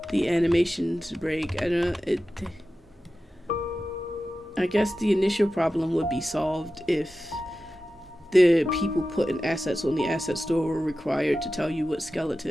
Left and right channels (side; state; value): both; normal; correlation 0.93